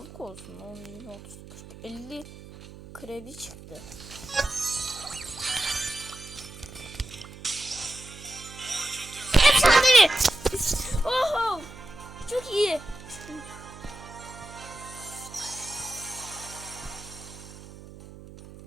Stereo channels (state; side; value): noise; right; hum, 16 dB below the sound